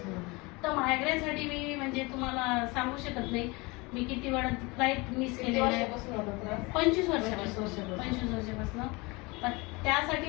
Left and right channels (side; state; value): right; quieter; 25.5 dB